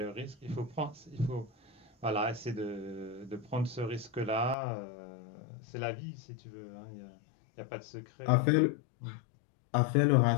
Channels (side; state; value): right; drops out; at 4.5 s